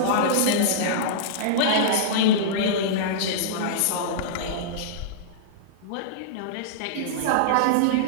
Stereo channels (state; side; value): different; both; correlation -0.03